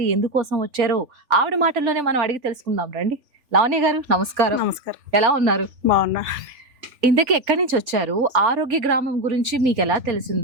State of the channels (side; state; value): left; late; 3.4 ms